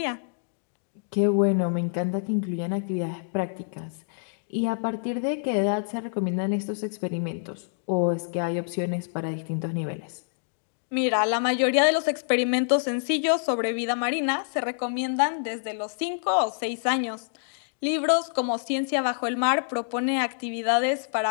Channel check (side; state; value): right; silent; digital silence